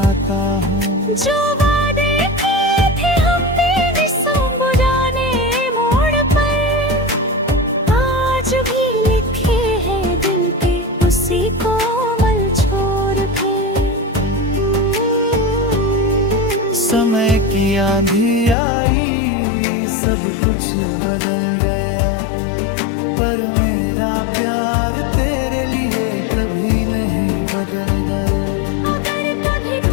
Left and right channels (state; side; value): drops out; right; at 18.6 s